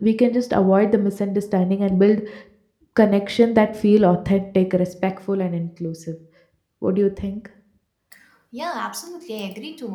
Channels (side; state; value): both; identical; correlation 1.00